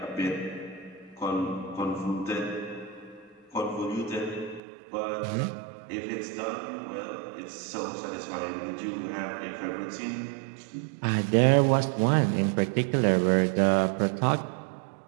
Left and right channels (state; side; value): drops out; left; at 4.6 s